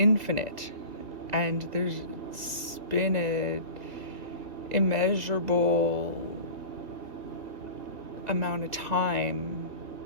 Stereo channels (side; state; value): left; late; 2.3 ms